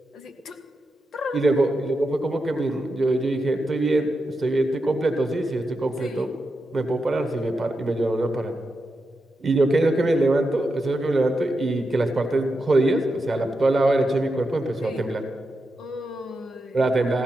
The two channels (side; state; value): both; normal; correlation 0.87